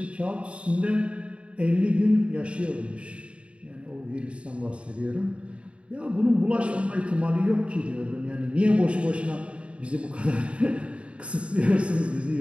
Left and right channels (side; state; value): left; late; 0.060 ms